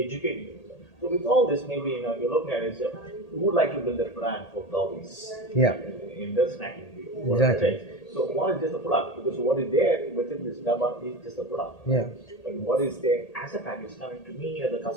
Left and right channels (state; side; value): late; right; 1.8 ms